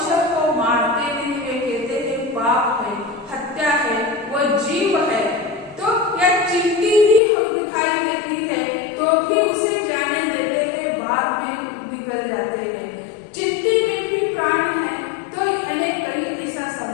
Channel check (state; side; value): drops out; right; at 7.2 s